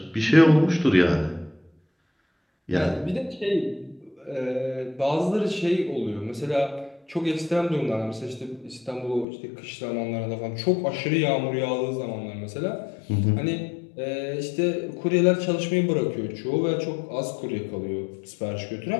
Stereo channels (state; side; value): drops out; right; at 9.2 s